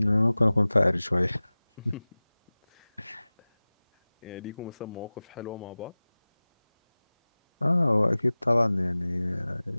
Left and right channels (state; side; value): inverted; both; correlation -0.98